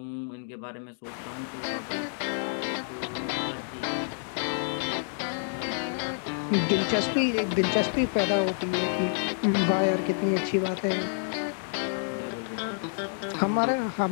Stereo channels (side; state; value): right; silent; digital silence